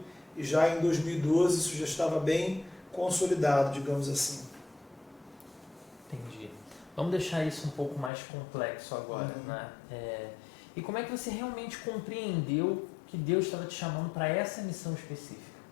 e já em 2012 isso já estava bem consolidado, digamos assim. Entendi. Vamos deixar isso um pouco mais complexo agora, né? E como é que você realmente compreendeu que Deus estava te chamando para essa missão específica?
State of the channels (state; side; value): drops out; right; at 8.1 s